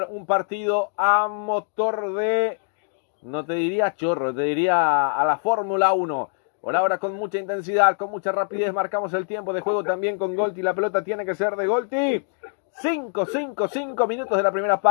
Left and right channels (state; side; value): silent; right; 63 dB below the other